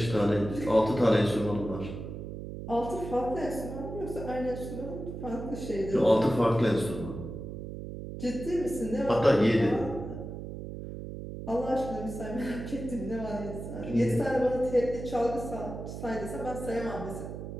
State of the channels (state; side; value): noise; right; hum, 8 dB below the sound